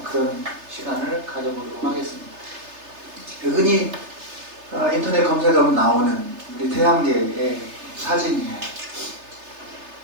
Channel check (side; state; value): left; late; 3.3 ms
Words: 그런 시간을 가져보도록 하겠습니다. 흔히 인터넷 검색하면 나오는 우리 태양계의 사진이에요.